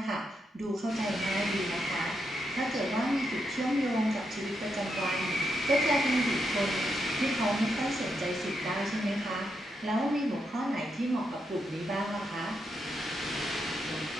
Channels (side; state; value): both; normal; correlation 0.82